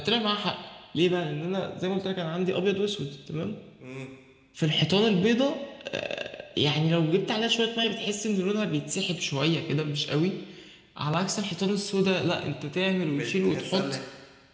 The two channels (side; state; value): both; identical; correlation 1.00